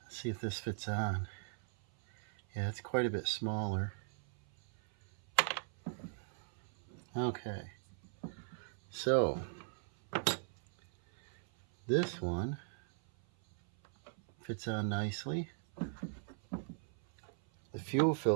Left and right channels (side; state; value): left; silent; 52 dB below the other